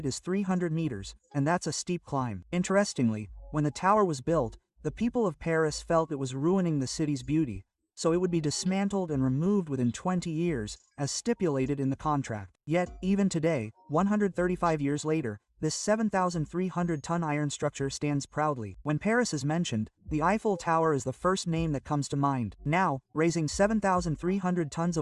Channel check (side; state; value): both; identical; correlation 1.00